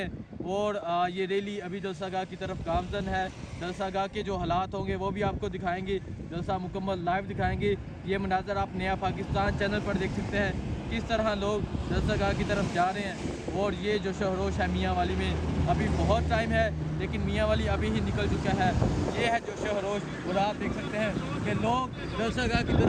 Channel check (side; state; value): both; identical; correlation 1.00